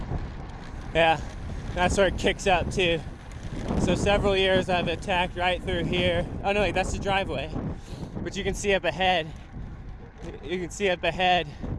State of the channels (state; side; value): identical; both; correlation 1.00